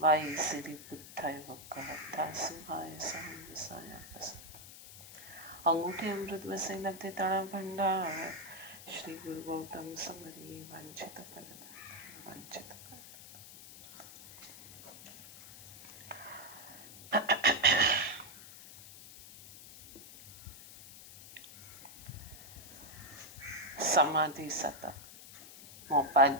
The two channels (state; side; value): noise; left; hiss, 16 dB below the sound